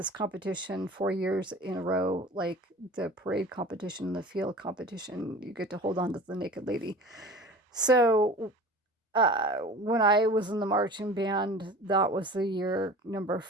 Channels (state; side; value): normal; both; correlation 0.39